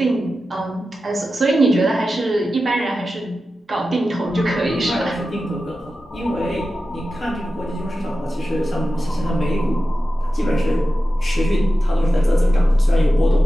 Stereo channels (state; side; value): normal; both; correlation 0.93